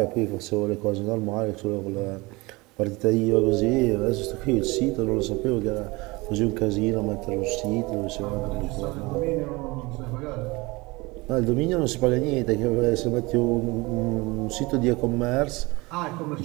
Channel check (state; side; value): quieter; left; 23.6 dB